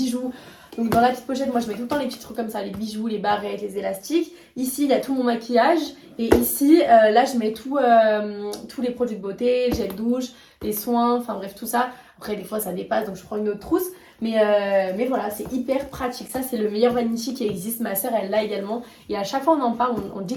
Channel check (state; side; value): identical; both; correlation 1.00